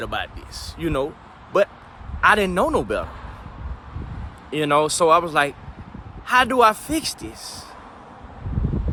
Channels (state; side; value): identical; both; correlation 1.00